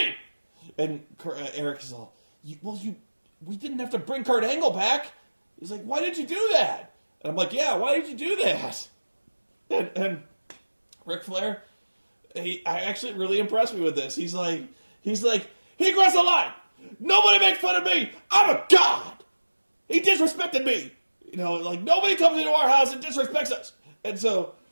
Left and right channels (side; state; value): both; inverted; correlation -1.00